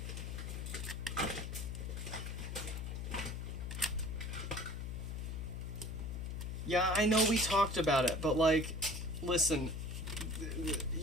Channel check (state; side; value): noise; left; hum, 4 dB below the sound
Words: Yeah, I know we talked about it, but like, listen,